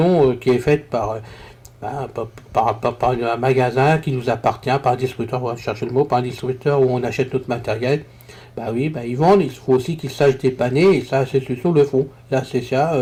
qui est faite par un magasin qui nous appartient, par un distributeur, on va chercher le mot, par un distributeur où on achète notre matériel. Ils vendent, il faut aussi qu'ils sachent dépanner, et ça, ces solutions le font. Là, c'est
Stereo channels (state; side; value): identical; both; correlation 1.00